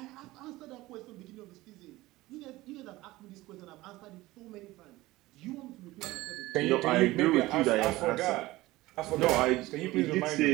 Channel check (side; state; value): left; quieter; 18.7 dB